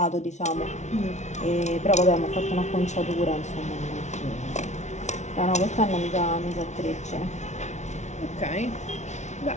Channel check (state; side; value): late; right; 0.33 ms